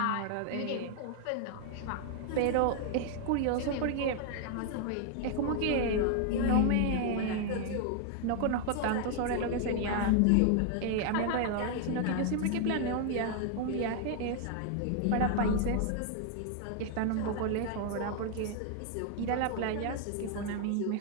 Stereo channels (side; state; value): both; different; correlation 0.00